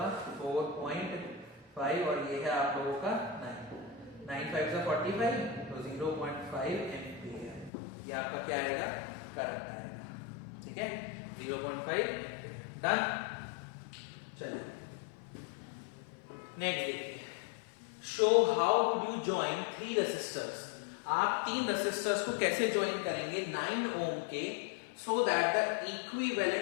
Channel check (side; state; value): right; drops out; at 7.7 s